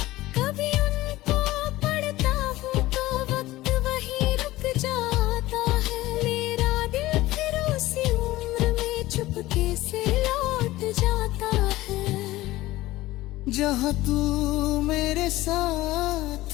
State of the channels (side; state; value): right; quieter; 17.4 dB